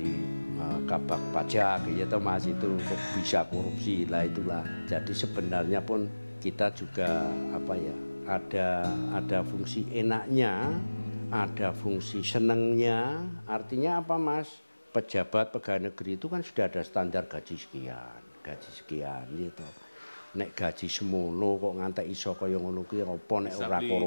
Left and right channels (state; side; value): inverted; both; correlation -1.00